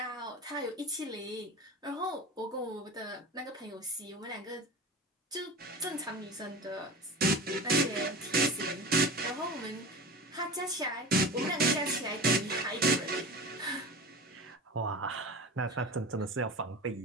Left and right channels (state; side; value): normal; both; correlation 0.32